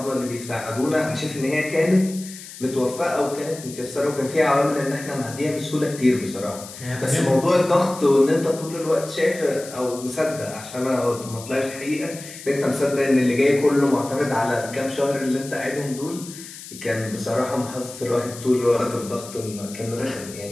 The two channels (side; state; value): left; noise; hiss, 14 dB below the sound